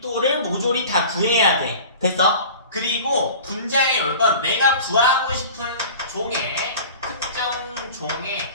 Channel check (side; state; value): both; inverted; correlation -0.39